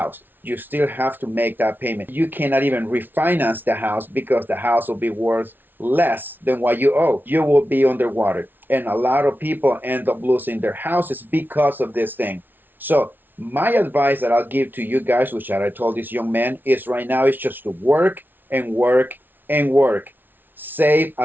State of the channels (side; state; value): left; late; 0.092 ms